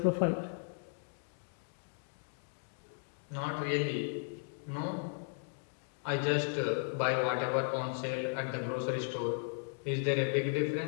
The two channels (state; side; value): silent; right; 54 dB below the other